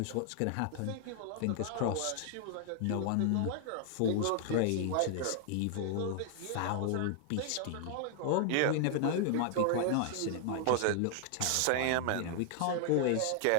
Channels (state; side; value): different; both; correlation 0.00